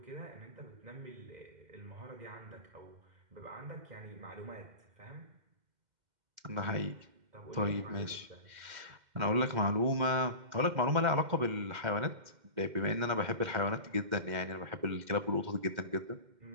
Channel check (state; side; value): late; left; 2.1 ms